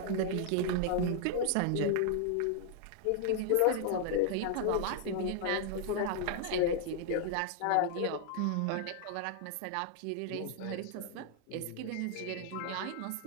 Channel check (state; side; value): different; both; correlation 0.00